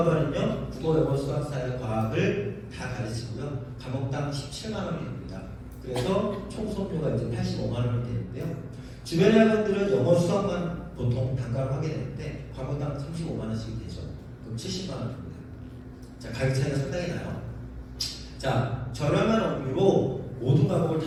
국어, 영어, 수학, 사회, 과학을 다 가르치고요. 과목당 17만 원이 됩니다. 그래서 총 수업료가 이제 85만 원이 되는데요. 주변 학원들은 영어, 수학만 보통 단가로 하게 되는데 과목당 35만 원씩 되죠. 그럼 70만 원입니다. 자, 가격 차이가 상당히 나요. 자, 저렴한 업무로 모든 과목을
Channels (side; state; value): both; identical; correlation 1.00